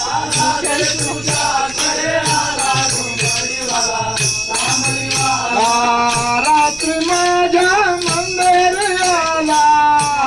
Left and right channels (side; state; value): right; noise; rumble, 18 dB below the sound